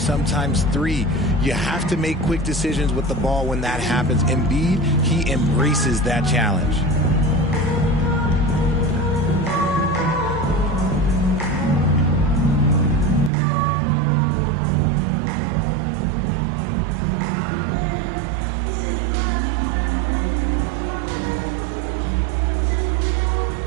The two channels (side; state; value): left; drops out; at 13.3 s